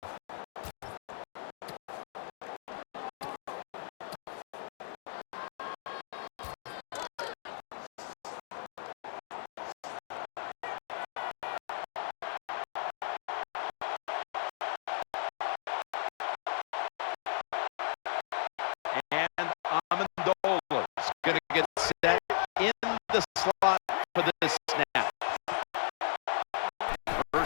And Amendola is going to get set in the slot for this snap.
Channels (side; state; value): right; silent; digital silence